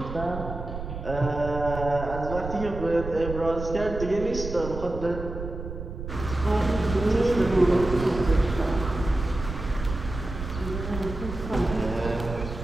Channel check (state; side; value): noise; right; rumble, 8 dB below the sound